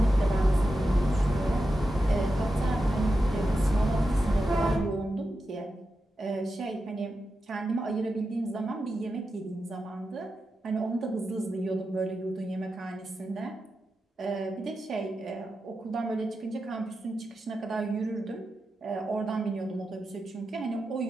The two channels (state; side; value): normal; both; correlation 0.90